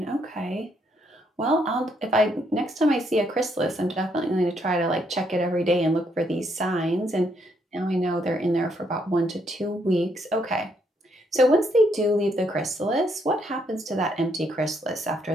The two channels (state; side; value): normal; both; correlation 0.73